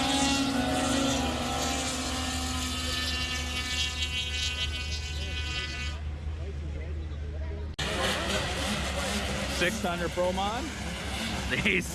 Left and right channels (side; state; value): both; identical; correlation 1.00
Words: 600 Pro Mod. These